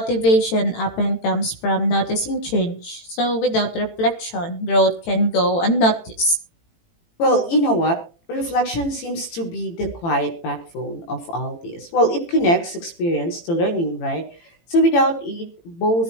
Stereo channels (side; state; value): right; late; 18 ms